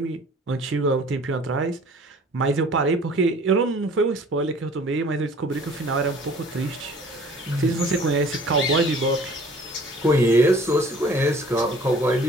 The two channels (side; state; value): both; normal; correlation 0.51